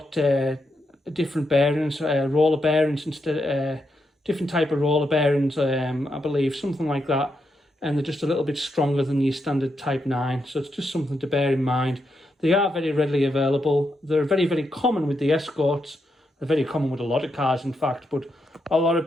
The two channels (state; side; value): normal; both; correlation 0.82